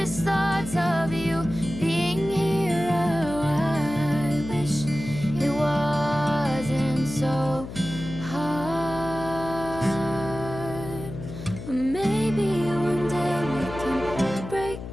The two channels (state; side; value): noise; left; hum, 10 dB below the sound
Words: thoughts of you being here. Oh, I wish it wasn't so hard. But maybe one day we can break